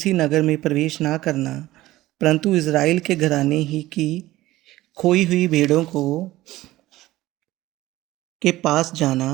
नगर में प्रवेश ना करना, परंतु इज़राइल के घराने ही की खोई हुई भेड़ों को के पास जाना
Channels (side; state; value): left; quieter; 16.8 dB